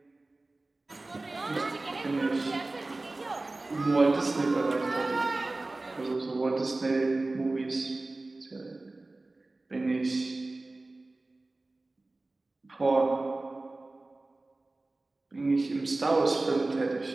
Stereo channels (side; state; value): left; quieter; 3.1 dB